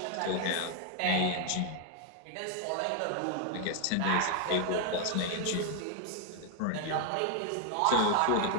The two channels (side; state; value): both; different; correlation 0.00